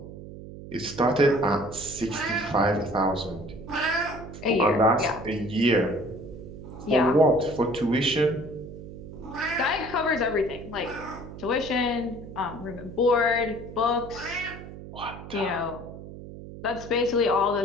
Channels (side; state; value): right; noise; hum, 13 dB below the sound